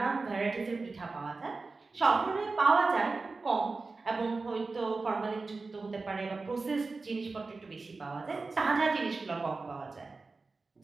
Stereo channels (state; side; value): quieter; left; 3.9 dB